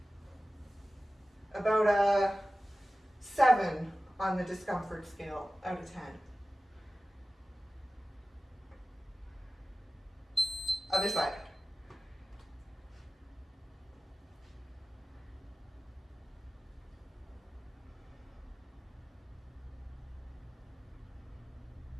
About a 7 on the discomfort scale out of 10. Other side.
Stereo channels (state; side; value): normal; both; correlation 0.95